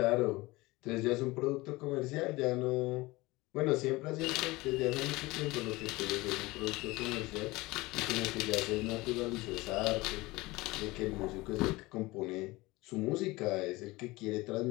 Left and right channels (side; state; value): right; quieter; 21.3 dB